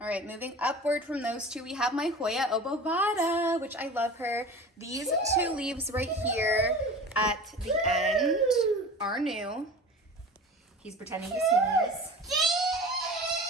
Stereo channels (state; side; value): normal; both; correlation 0.37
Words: All right, moving upward from those two, we have my Hoya obovata, which I love her. These two leaves right here at the end are new. He's pretending to sneeze.